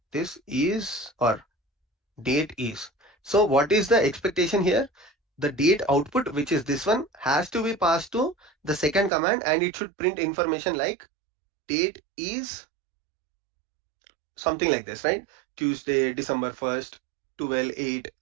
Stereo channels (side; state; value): left; drops out; at 9.1 s